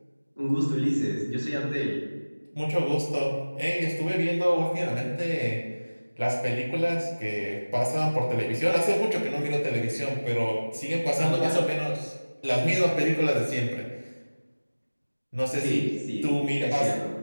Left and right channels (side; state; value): both; inverted; correlation -1.00